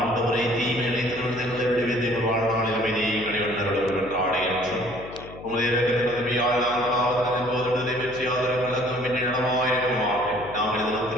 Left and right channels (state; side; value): noise; left; hum, 16 dB below the sound